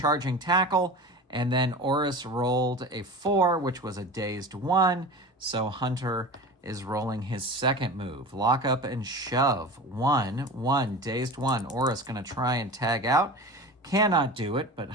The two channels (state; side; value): normal; both; correlation 0.33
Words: tackle, and then Oris rolled a 4, which was a dazed 1. So Hunter is rolling his second move. Lock up and shove. 1, dazed 1. Oris going to try and tag out. Cannot do it, but